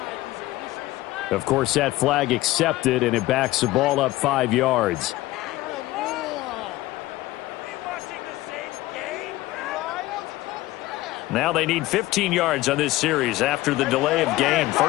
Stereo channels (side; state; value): right; quieter; 17.6 dB